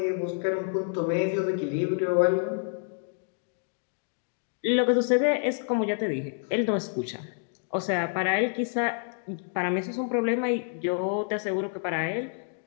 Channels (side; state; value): right; silent; 59 dB below the other